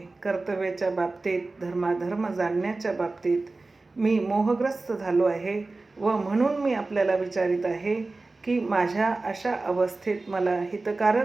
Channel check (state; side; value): quieter; left; 3.4 dB